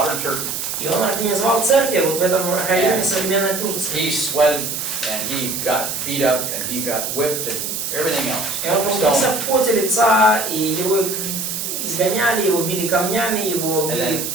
Turkey. И он организовал церкви вот в этом районе современной Турции. He sweated, and he got beat up, and he got whipped, and everything else. И он трудился в поте лица, и его изгоняли, его били камнями, его били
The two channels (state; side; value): noise; right; hiss, 4 dB below the sound